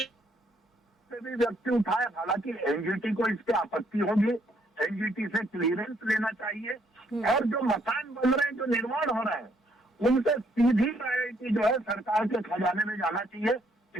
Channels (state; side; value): normal; both; correlation 0.69